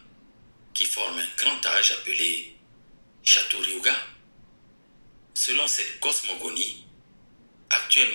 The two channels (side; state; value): both; inverted; correlation -1.00